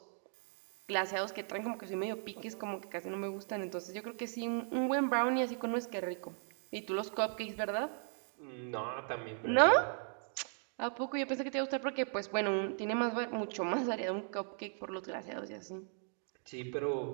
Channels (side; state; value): left; silent; 53 dB below the other